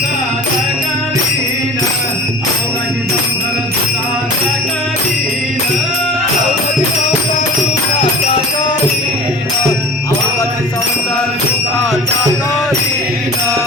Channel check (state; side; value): noise; right; rumble, 24 dB below the sound